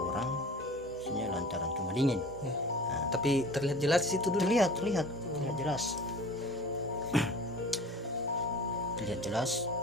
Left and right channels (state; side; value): normal; both; correlation 0.41